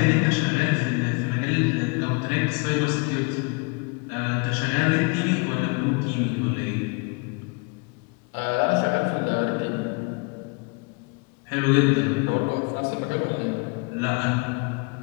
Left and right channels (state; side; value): quieter; right; 31.4 dB